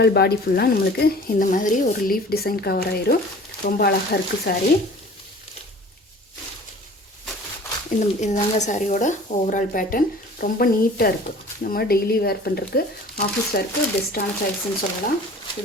பாடி ஃபுல்லாக நம்மளுக்கு இந்த மாதிரி ஒரு லீஃப் டிசைன் கவர் ஆயிரும். ரொம்ப அழகாக இருக்குது சாரீ. இதுதாங்க சாரியோட ஓவரால் பேட்டர்ன். ரொம்ப நீட்டாக இருக்குது. நம்ம டெய்லி வேர் பண்ணுறதுக்கு ஆஃபீஸ் வேருக்கு பெஸ்ட்டான சாரீஸ்ன்னு சொல்லலாம்.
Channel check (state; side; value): normal; both; correlation 0.45